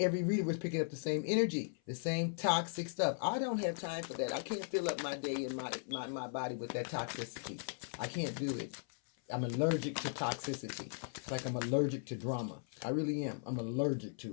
reader was picking up the same energy, the same toxic stuff. I don't have time for that. I can't fill up my day and my body with that toxicity. I can't do it. I'm allergic to toxicity. It's like I'm allergic to drama. I really am. I'm allergic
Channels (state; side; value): silent; right; 53 dB below the other